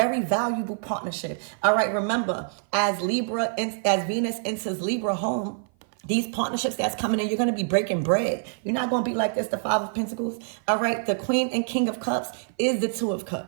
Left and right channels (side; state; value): left; silent; 56 dB below the other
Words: valuable partnership. All right. Remember, as Venus enters Libra home, these partnerships that's coming in, you're going to be breaking bread. You're not going to be like this, the 5 of Pentacles. All right. The Queen and King of Cups is the 2 of